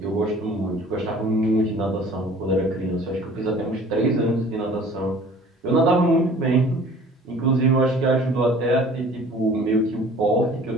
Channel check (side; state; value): both; normal; correlation 0.48